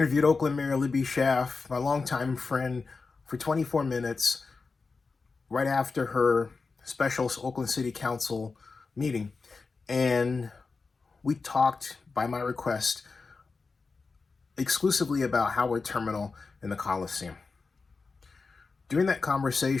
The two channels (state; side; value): quieter; right; 4.3 dB